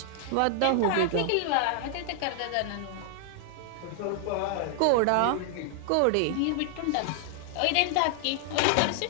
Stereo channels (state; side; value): different; both; correlation 0.00